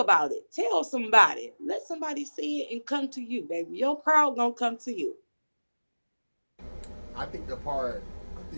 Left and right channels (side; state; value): both; inverted; correlation -1.00